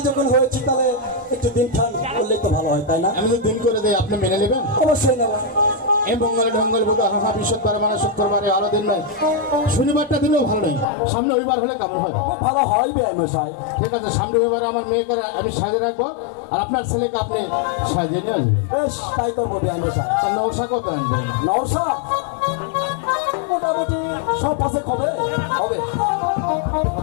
যখন হয়েছি তাহলে একটু দিন খান করলেই তো ভালো হয়, তাই না? আমি তো দিন করে দেই, আপনি মেনে নেবেন? অবশ্যই নেব। এই মঙ্গল ঢঙ্গল বোধ হাহা বিশ্বদ্বার মানে শুক্রবারে আরো দিন নয়, শনিবারটা দিনও ভালো নেই, সামনে রবিবার হলে কেমন হয়? খুব ভালো হয় বিআই মশাই। ঠিক আছে, সামনে রবিবারে আমার মেয়েকে আমি সাজিয়ে রাখবো, আর আপনার ছেলেকে আপনি সাজিয়ে নিয়ে আসবেন। বেশ, তাই করবো বিআই মশাই। তা নশা কত আনবেন? নওশা মোটামুটি 100 পাঁচেক হবে।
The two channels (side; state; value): right; drops out; at 10.9 s